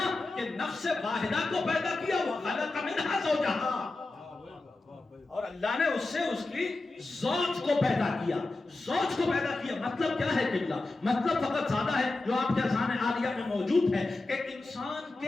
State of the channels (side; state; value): right; quieter; 3.2 dB